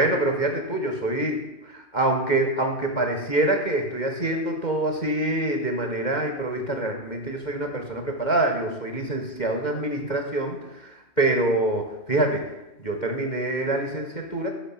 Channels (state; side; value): late; right; 2.1 ms